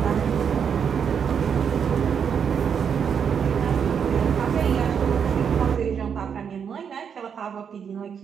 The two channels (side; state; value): left; quieter; 7.3 dB